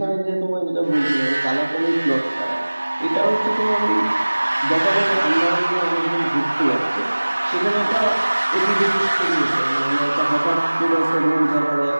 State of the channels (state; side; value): inverted; both; correlation -1.00